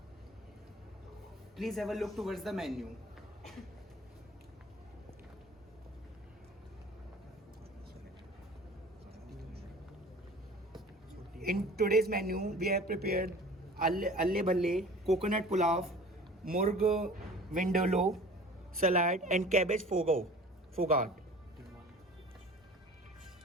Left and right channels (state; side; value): normal; both; correlation 0.43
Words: Please have a look towards the menu. In today's menu, we have prepared alle bhalle, coconut pulao, murg vindaloo, salad and cabbage fogart.